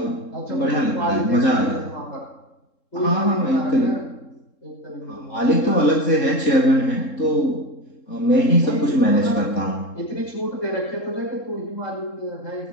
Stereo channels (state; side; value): late; right; 3.7 ms